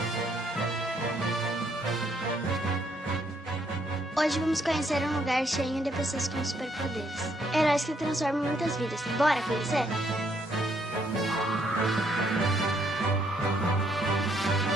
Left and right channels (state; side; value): normal; both; correlation 0.71